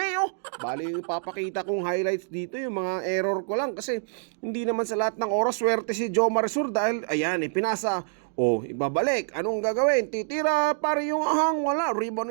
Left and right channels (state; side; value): silent; left; digital silence